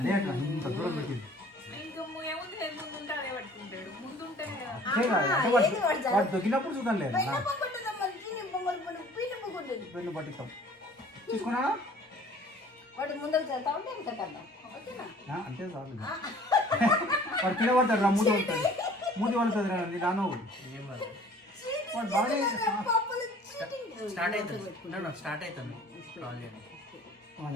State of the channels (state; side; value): normal; both; correlation 0.50